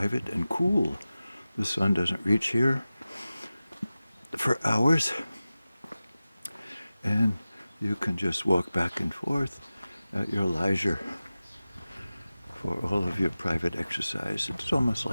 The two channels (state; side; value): inverted; both; correlation -0.96